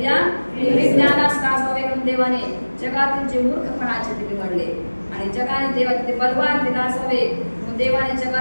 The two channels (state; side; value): inverted; both; correlation -1.00